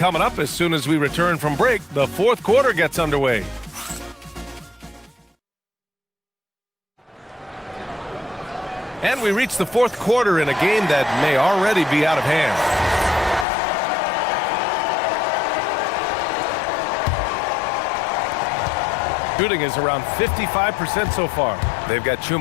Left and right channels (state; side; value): drops out; right; at 13.5 s